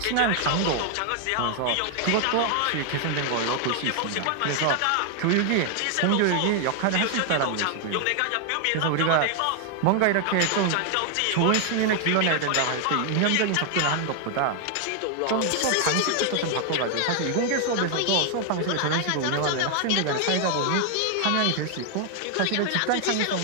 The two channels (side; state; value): both; different; correlation 0.00